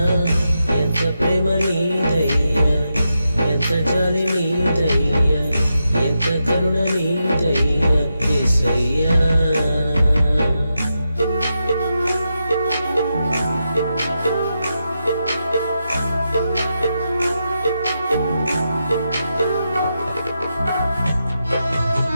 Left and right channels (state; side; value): inverted; both; correlation -0.87